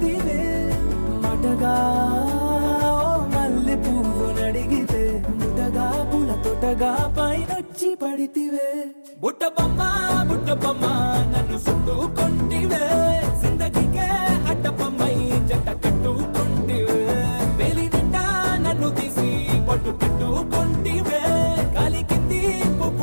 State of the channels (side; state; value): both; inverted; correlation -1.00